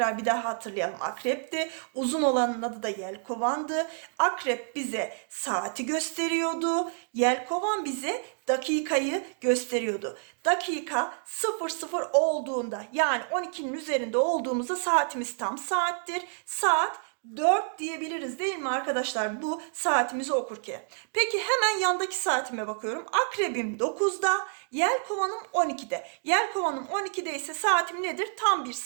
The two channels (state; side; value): silent; left; 59 dB below the other